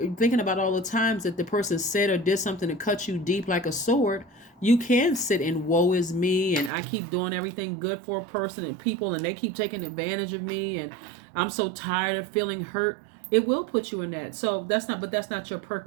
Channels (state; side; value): drops out; left; at 6.7 s